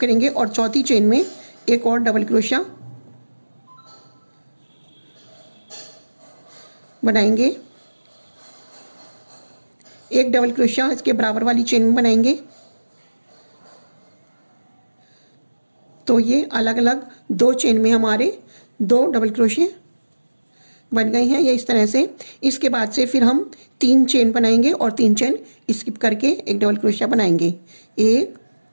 और चौथी चेन में एक और डबल क्रोशिया बनाएंगे। एक डबल क्रोशिया इसके बराबर वाली चेन में बनाएंगे। तो ये अलग अलग 2 चेन में हमारे 2 डबल क्रोशिया बन गए हैं, ये इस तरह से। इसके बाद से फिर हम 3 चेन बनाएंगे और 3 चेन स्किप करके एक डबल क्रोशिया बनाएंगे। एक,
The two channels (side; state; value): both; inverted; correlation -1.00